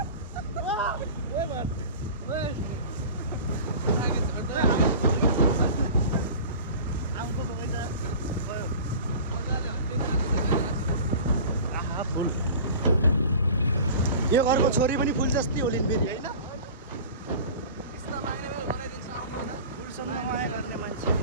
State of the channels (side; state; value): both; inverted; correlation -0.37